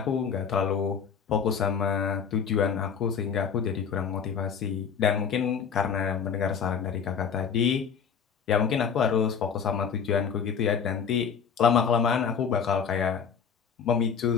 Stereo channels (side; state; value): right; quieter; 6.9 dB